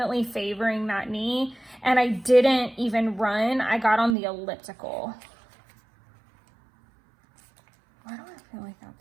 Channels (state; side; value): drops out; left; at 4.2 s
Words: favoring that knee, and I didn't even run. I got on the elliptical. Why do I feel like